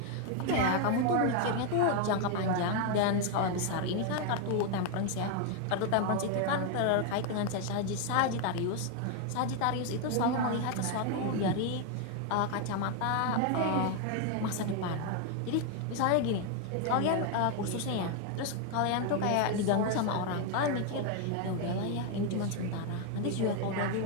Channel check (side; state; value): both; different; correlation 0.01